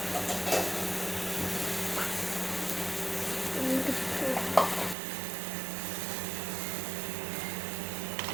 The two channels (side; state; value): left; drops out; at 5.0 s